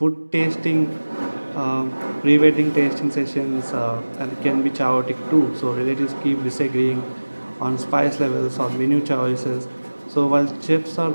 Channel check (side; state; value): both; inverted; correlation -1.00